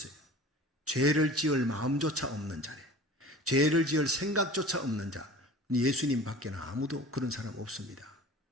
죄를 지을 마음조차 없는 자래. 죄를 지을 생각조차 없는 자. 예수님 밖에는 아무도 그런 사람 없습니다.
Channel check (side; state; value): both; normal; correlation 0.41